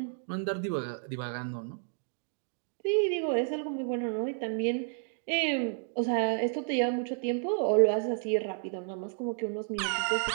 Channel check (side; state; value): left; silent; digital silence